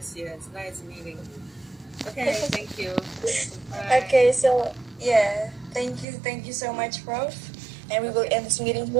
yes. Nice meeting you. Okay, thank you. Bye. Okay, so yeah, thank you so much, Prof. And we will Okay. end this meeting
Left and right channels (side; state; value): left; drops out; at 6.1 s